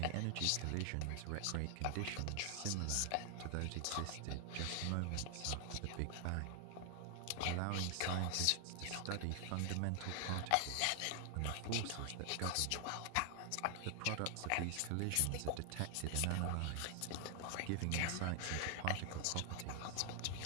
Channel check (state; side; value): different; both; correlation 0.00